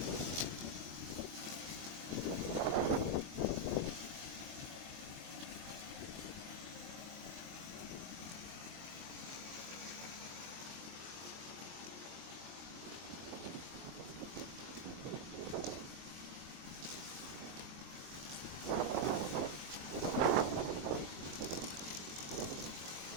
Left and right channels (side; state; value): left; late; 23 ms